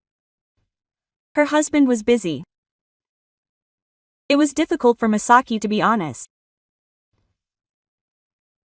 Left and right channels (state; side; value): identical; both; correlation 1.00